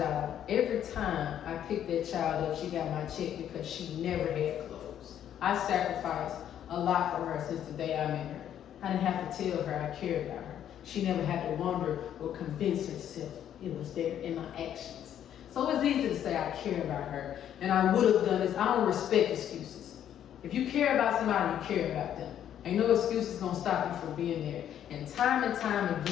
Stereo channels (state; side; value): quieter; right; 10.2 dB